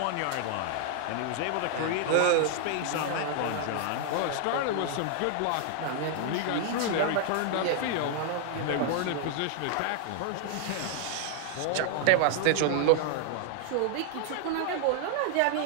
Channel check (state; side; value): different; both; correlation 0.00